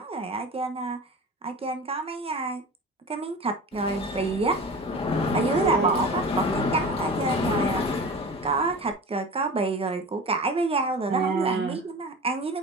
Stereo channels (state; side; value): normal; both; correlation 0.34